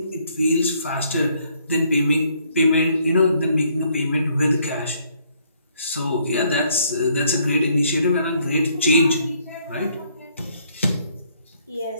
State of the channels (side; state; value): both; inverted; correlation -0.67